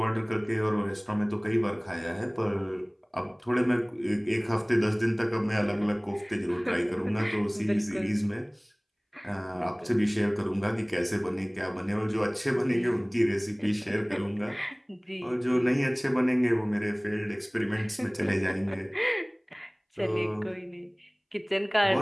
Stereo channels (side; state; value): both; identical; correlation 1.00